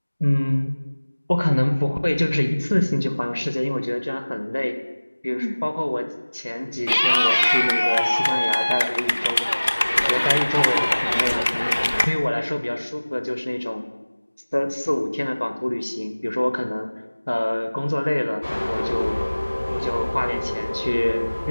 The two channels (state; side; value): inverted; both; correlation -1.00